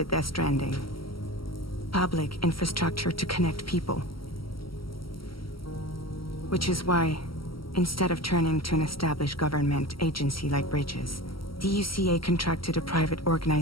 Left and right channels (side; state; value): right; late; 0.75 ms